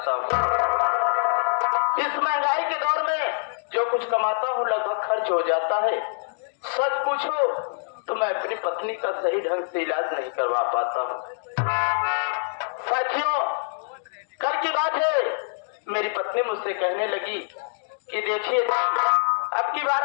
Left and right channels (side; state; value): right; silent; digital silence